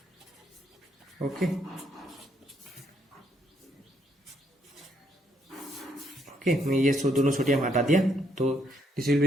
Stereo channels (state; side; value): normal; both; correlation 0.73